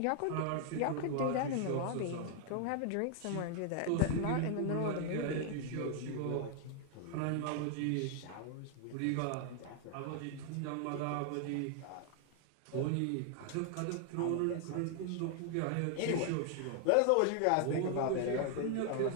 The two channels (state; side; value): different; both; correlation 0.00